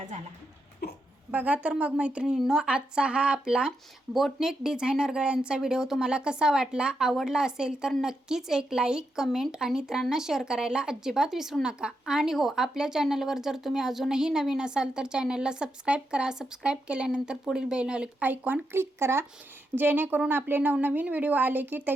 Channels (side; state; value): both; normal; correlation 0.83